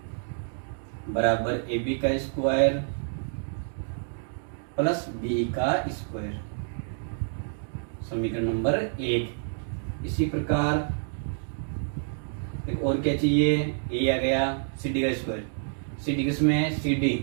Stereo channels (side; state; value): left; silent; digital silence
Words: बराबर ए बी का स्क्वायर प्लस बी का स्क्वायर, समीकरण नंबर 1। इसी प्रकार एक और क्या चाहिए, ए आ गया, सी डी का स्क्वायर, सी डी किसमें, सी डी